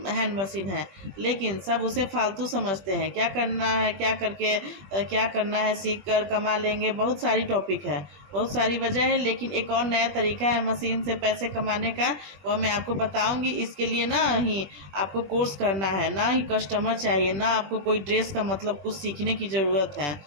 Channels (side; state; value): left; late; 21 ms